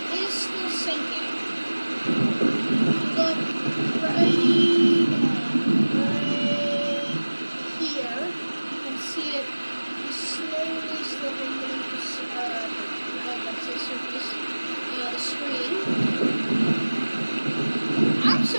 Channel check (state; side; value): inverted; both; correlation -1.00